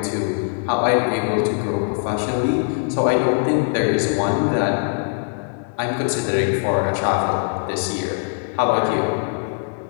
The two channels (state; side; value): silent; right; 65 dB below the other